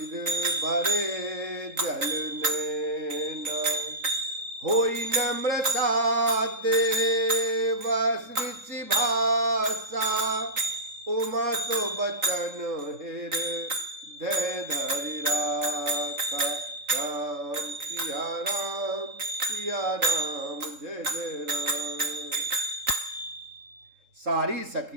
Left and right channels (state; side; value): late; left; 3.8 ms